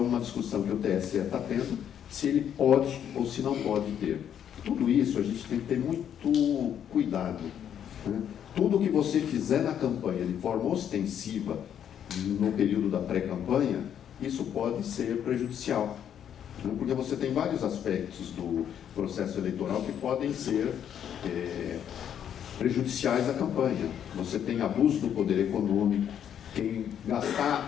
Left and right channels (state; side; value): quieter; right; 9.3 dB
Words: discussão que o TSE está tendo, se ele pode ou se não pode ter. Tudo isso a gente tem que ter muito cuidado, né? Tudo que você fizer na campanha de forma ostensiva, no período da pré-campanha, isso pode ser prejudicial, né? Porque você tem vários aspectos do processo eleitoral que podem ser prejudiciais à campanha. Você tem abuso do poder econômico, quem gastar